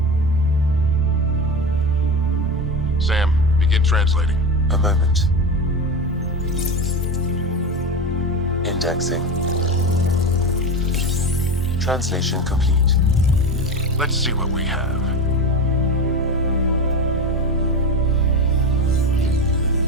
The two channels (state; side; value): normal; both; correlation 0.23